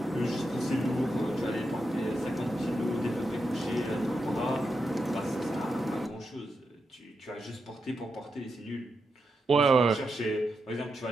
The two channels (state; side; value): normal; both; correlation 0.86